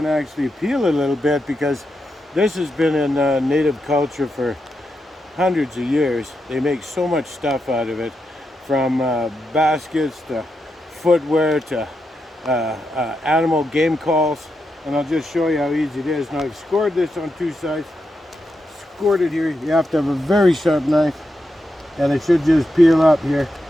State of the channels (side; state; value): both; normal; correlation 0.85